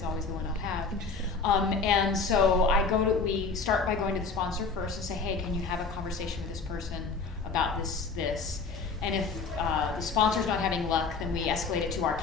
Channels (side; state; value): right; quieter; 4.6 dB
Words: always the one I'll have. And so we start by going to the sponsor first and say, hey, can you have a conversation with this person about this? And if the sponsor's not having luck, then we escalate it to our